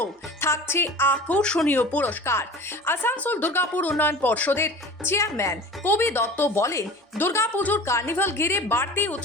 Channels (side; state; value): both; normal; correlation 0.39